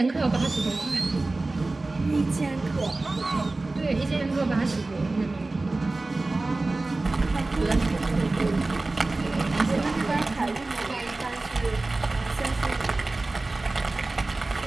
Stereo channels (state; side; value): quieter; left; 3.2 dB